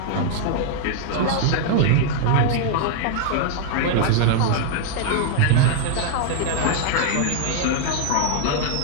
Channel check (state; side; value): different; both; correlation 0.00